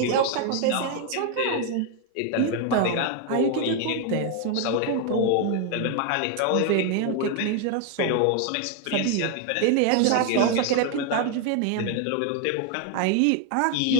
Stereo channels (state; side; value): different; both; correlation 0.00